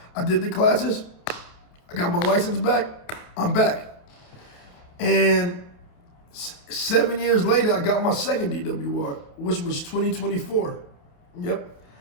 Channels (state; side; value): late; right; 29 ms